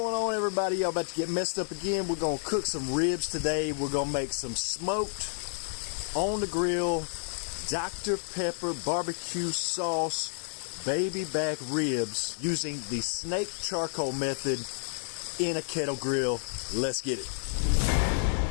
on, everybody? Y'all about to get messed up again. We're gonna cook some ribs today. We're gonna make some smoked on the grill Dr. Pepper barbecue sauce baby back ribs using the snake charcoal method in a kettle grill. Let's get it.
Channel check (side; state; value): right; silent; digital silence